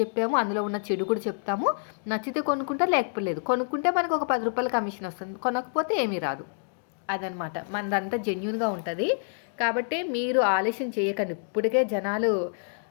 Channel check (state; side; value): silent; right; digital silence